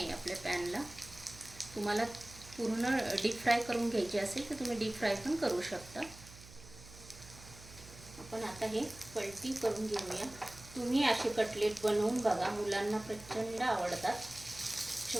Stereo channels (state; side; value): noise; right; hum, 18 dB below the sound